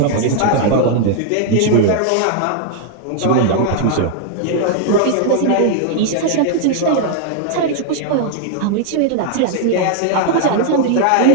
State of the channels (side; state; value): both; different; correlation 0.00